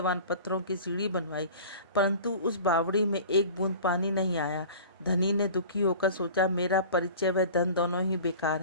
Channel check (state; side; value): inverted; both; correlation -0.40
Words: पत्थरों की सीढ़ी बनवाई, परंतु उस बावड़ी में एक बूंद पानी नहीं आया। धनी ने दुखी होकर सोचा, मेरा परिचय व धन दोनों ही बेकार